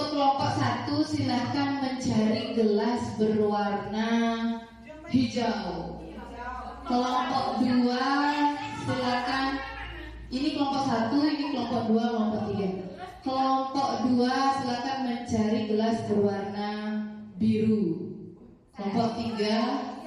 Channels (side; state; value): both; identical; correlation 1.00